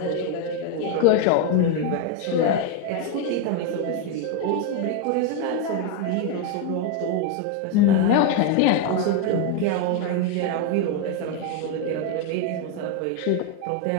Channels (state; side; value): different; both; correlation 0.01